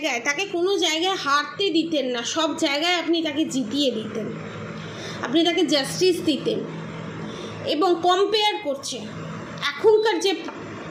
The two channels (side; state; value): both; identical; correlation 1.00